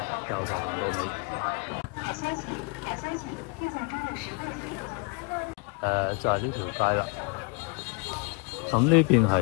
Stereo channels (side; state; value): right; quieter; 33.1 dB